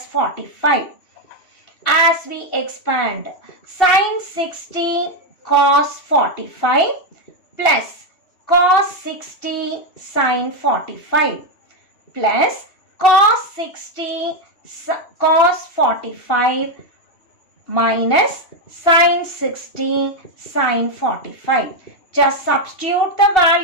45. As we expand, sine 60 cos 45 plus cos 60 sine 45 plus cos 60 cos 45 minus sine 60 sine 45. Just substitute the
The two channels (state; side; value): late; right; 2.7 ms